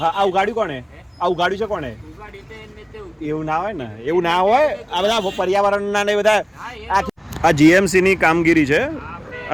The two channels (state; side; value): identical; both; correlation 1.00